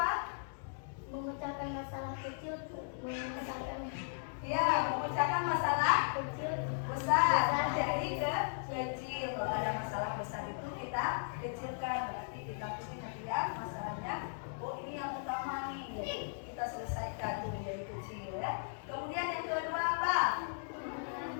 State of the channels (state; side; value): silent; right; digital silence